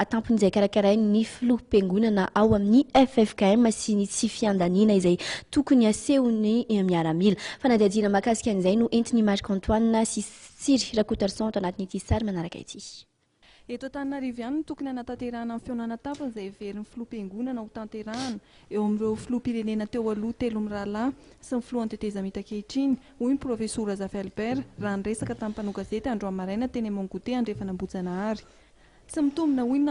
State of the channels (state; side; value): identical; both; correlation 1.00